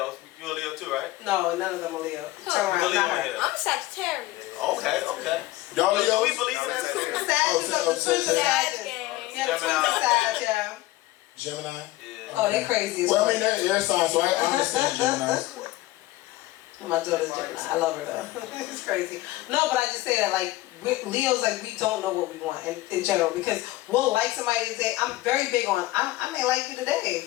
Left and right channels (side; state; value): right; quieter; 17.6 dB